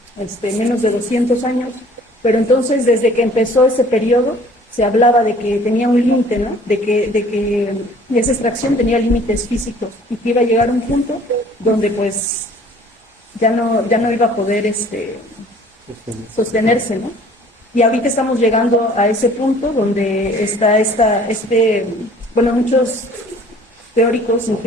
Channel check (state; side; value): normal; both; correlation 0.52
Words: menos de 200 años, pero entonces desde que empezó ese periodo se hablaba de que tenía un límite, ¿no? De que esa extracción tenía límites físicos y que iba a llegar a un punto donde pues ya no iba a poder sostenerse, ¿no? Y ahorita estamos llegando a ese punto donde está muchos teóricos,